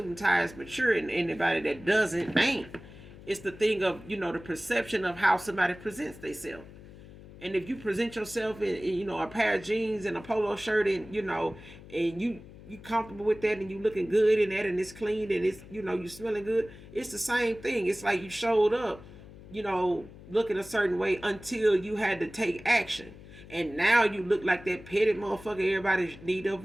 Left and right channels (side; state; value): left; noise; hum, 18 dB below the sound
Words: and tie is mature, and anybody that doesn't ain't. It's the thing of, the perception of how somebody presents themselves. And if you present yourself in a pair of jeans and a polo shirt, and, and you comfortable with that, and you looking good in that, and it's clean, and it's, you smelling good, it's the same thing. It's like you showed up, looking a certain way until you had to take action. And now you look like that petty motherfucker everybody need to